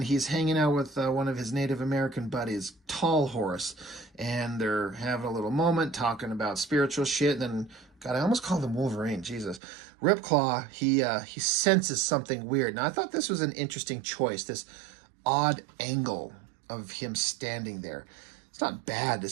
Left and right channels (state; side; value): drops out; left; at 9.6 s